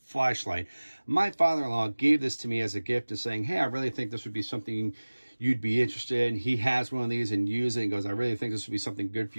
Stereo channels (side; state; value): both; inverted; correlation -1.00